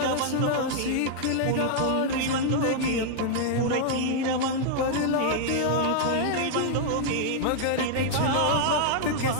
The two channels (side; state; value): both; different; correlation -0.01